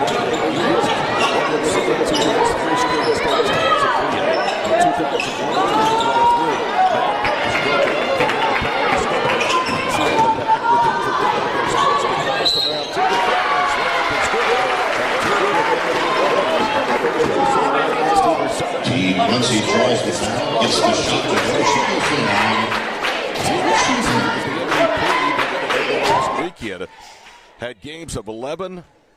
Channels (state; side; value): identical; both; correlation 1.00